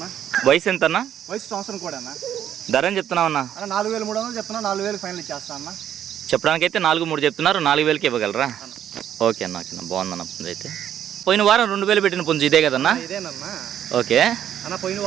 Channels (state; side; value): quieter; left; 10.3 dB